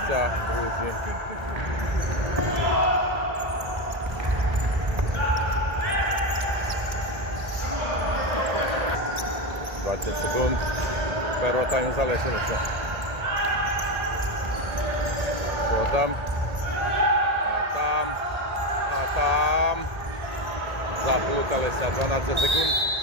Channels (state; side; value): late; left; 1.8 ms